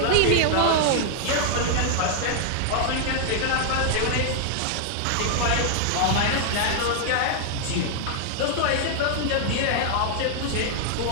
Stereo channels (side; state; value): both; different; correlation 0.00